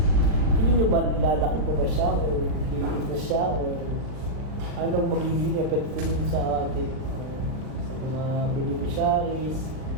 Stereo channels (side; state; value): left; late; 39 ms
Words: Hindi nyo ba lalaki po ba siya o liliit na siya o anong magiging epekto nun sa atin sa mga beneficiaries?